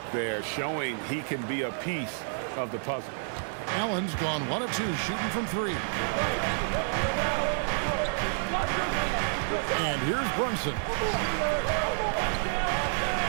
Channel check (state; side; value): silent; left; 58 dB below the other